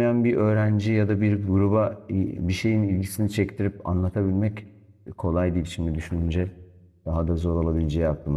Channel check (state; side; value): identical; both; correlation 1.00